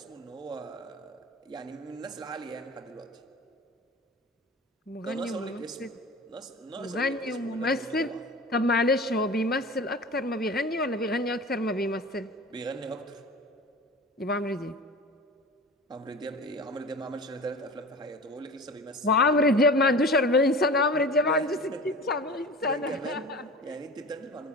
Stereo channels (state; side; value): normal; both; correlation 0.36